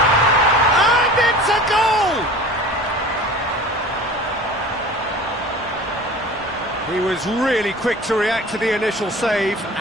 And it's a goal! He was really quick to react to the initial save,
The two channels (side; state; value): both; normal; correlation 0.40